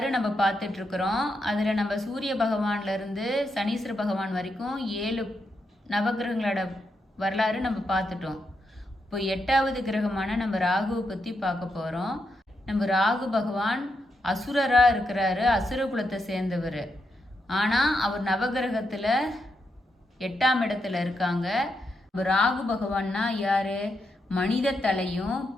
நம்ம பார்த்துட்ருக்குறோம். அதில் நம்ம சூரிய பகவான்லேருந்து சனீஸ்வர பகவான் வரைக்கும் 7 நவகிரகங்களோட வரலாறு நம்ம பார்த்துட்டோம். இப்போ 8வது கிரகமான நம்ம ராகுவை பற்றி பார்க்க போகிறோம். நம்ம ராகு பகவான் அசுரராக இருக்கிறாரு, அசுர குலத்தை சேர்ந்தவர். ஆனால் அவர் நவகிரகத்தில் 8ஆம் இடத்துல இருக்காங்க. ராகு பகவான்னா யாரு? மனித தலையும்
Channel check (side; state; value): both; normal; correlation 0.83